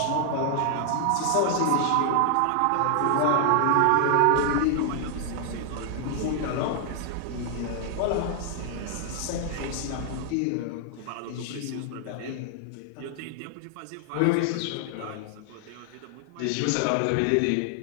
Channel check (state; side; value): different; both; correlation 0.00